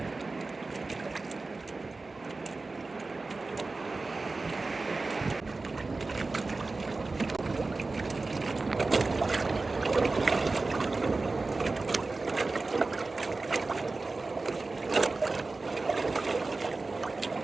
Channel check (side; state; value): left; quieter; 3.6 dB